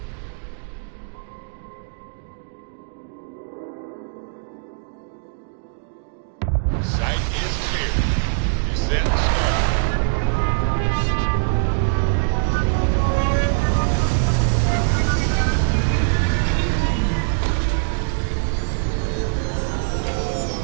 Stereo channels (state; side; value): silent; left; digital silence